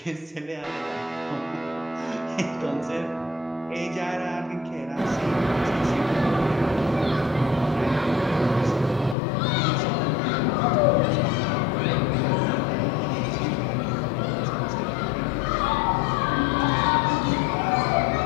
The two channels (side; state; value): right; drops out; at 9.2 s